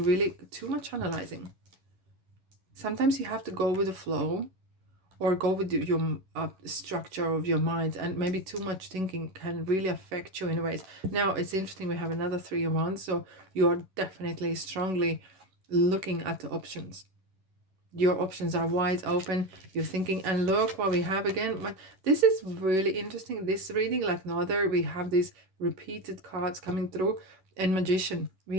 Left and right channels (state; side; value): late; left; 11 ms